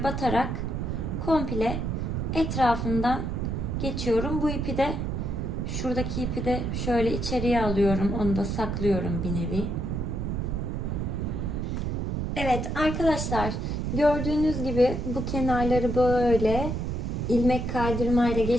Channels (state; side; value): noise; right; rumble, 2 dB below the sound